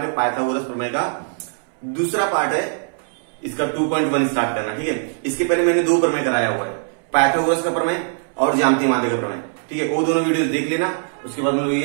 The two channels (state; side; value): silent; left; 65 dB below the other